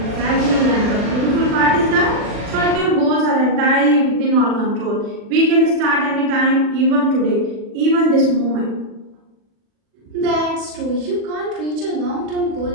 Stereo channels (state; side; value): late; left; 40 ms